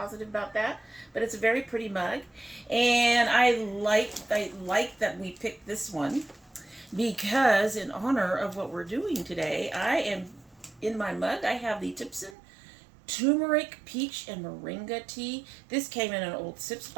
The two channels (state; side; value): drops out; left; at 12.4 s